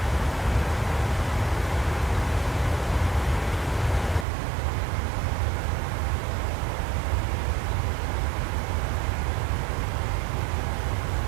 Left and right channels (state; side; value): drops out; left; at 4.2 s